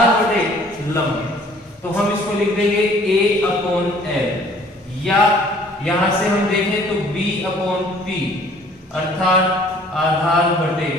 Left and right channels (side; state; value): both; normal; correlation 0.55